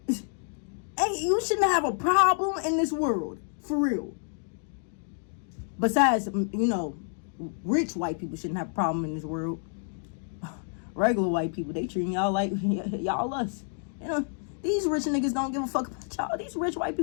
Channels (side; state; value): right; silent; 59 dB below the other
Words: you shouldn't have a problem in this world. For real. Besides, you know, rich white people shouldn't have a problem in this world. Regular white people, they treating y'all like y'all us. You know, these rich niggas don't give a fuck about y'all. These rich white